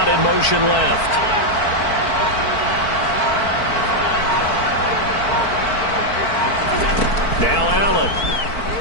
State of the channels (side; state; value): right; late; 4.5 ms